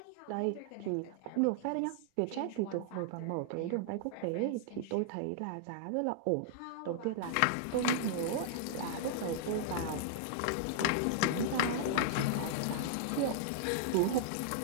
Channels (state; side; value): different; both; correlation -0.01